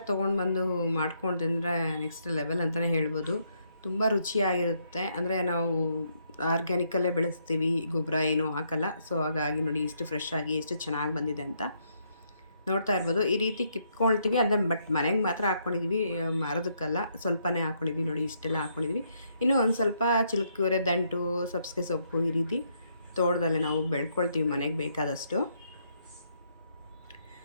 ತೊಗೊಂಡು ಬಂದು ಮಾಡ್ಕೊಂಡು ತಿಂದರೆ ನೆಕ್ಸ್ಟ್ ಲೆವೆಲ್ ಅಂತಲೇ ಹೇಳ್ಬೋದು. ತುಂಬ ರುಚಿಯಾಗಿರುತ್ತೆ. ಅಂದರೆ ನಾವು ಆರ್ಗ್ಯಾನಿಕಲ್ಲೇ ಬೆಳೆಸ್ತೀವಿ, ಗೊಬ್ಬರ ಏನೂ ಹಾಕಲ್ಲ. ಸೊ ಹಾಗಾಗಿ ನೋಡಿ ಎಷ್ಟು ಫ್ರೆಶ್ ಆಗಿ ಎಷ್ಟು ಚೆನ್ನಾಗಿ ಬಂದಿದೆ ಅಂತ ನೋಡ್ತಾ ಇರ್ಬೋದು. ಈ ರೀತಿ ಕಿತ್ಕೊಳ್ತೀವಿ, ಅಂದರೆ ಬಟ್ ಮನೆಗೆ ಮಾತ್ರ ಹಾಕ್ಕೊಂಡಿದ್ವಿ, ಮರದಕ್ಕಲ್ಲ. ಸ್ವಲ್ಪನೇ ಹಾಕ್ಕೊಂಡಿದ್ವಿ ನೋಡಿ, ಇಷ್ಟೆಲ್ಲ ಹಾಕ್ಕೊಂಡಿದ್ವಿ. ಇನ್ನೂ ಒಂದು ಸ್ವಲ್ಪ ಚಿಲ್ಕುರೆ ದಂಟು, ಸಬ್ಸಿಗೆ ಸೊಪ್ಪು ಈ ರೀತಿ ತೋಟದಲ್ಲೇ ನಾವು ಬೆಳ್ಕೊಳ್ತೀವಿ ಮನೆಗೆ ಬೇಕಾದಷ್ಟು.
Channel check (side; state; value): both; inverted; correlation -0.74